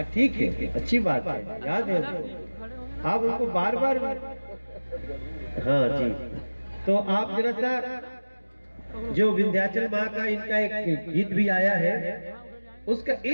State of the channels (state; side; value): inverted; both; correlation -1.00